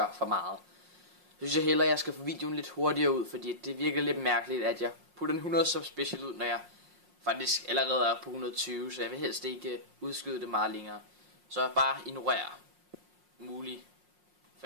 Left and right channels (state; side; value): late; left; 5.6 ms